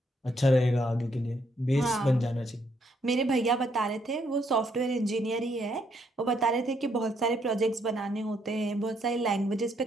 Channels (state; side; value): normal; both; correlation 0.73